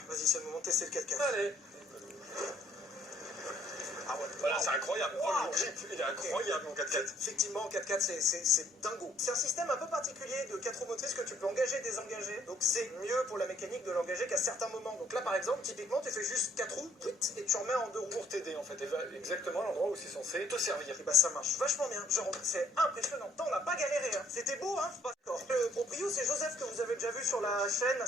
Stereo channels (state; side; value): normal; both; correlation 0.64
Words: vas-y, c'est le moment de tester le 4x4. Allez. Ah ouais, Voilà, wow. c'est incroyable. Wow. Oh, le grip, il est incroyable, mon 4x4. Effectivement, 4x4, c'est dingo. C'est un système un peu particulier de 4 roues motrices que tu peux engager et désengager. Donc c'est mieux pour la mécanique de l'engager qu'à certains moments. Donc là, par exemple, typiquement, tu fais juste 4 roues, et tu remets en 2 roues. Pour t'aider, en fait. Et exactement l'endroit où c'est censé te servir. Et bah ça marche vachement bien. Genre, c'est impressionnant. On n'a pas galéré. Hein. C'était beau, hein. Le proprio, c'est Joseph que vous avez déjà vu sur la chaîne.